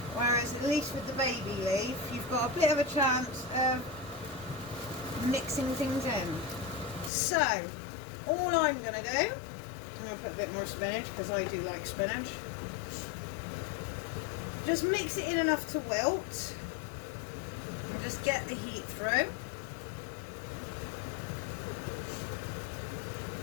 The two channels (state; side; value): drops out; right; at 7.1 s